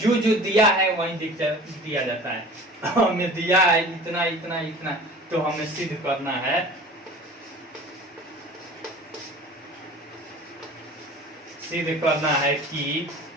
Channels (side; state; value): both; normal; correlation 0.42